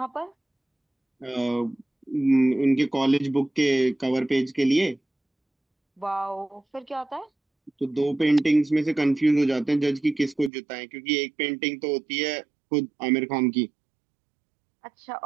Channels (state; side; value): drops out; left; at 10.5 s